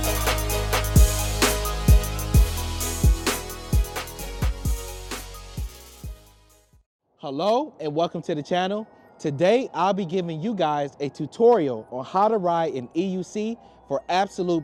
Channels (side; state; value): both; identical; correlation 1.00